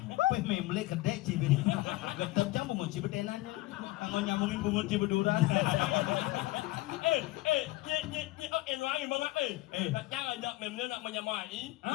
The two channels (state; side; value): quieter; right; 19.0 dB